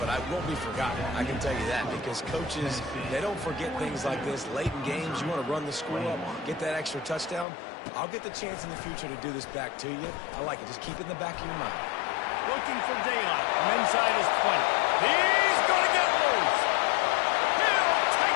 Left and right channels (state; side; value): drops out; right; at 7.5 s